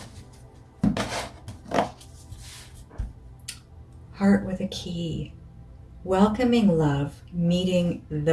Heart with a key. Welcoming love, meeting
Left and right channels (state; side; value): identical; both; correlation 1.00